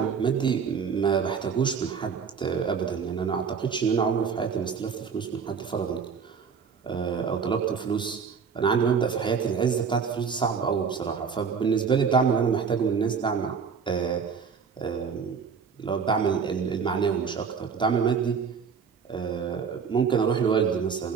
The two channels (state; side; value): quieter; left; 6.2 dB